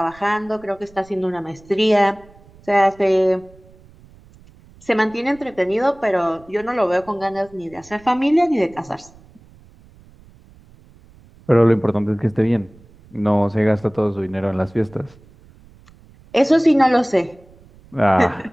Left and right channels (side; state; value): right; noise; rumble, 26 dB below the sound